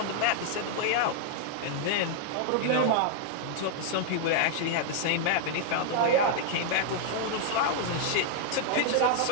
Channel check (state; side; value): different; both; correlation 0.00